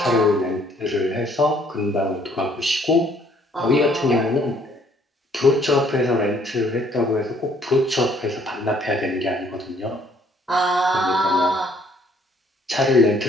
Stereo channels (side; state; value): both; normal; correlation 0.63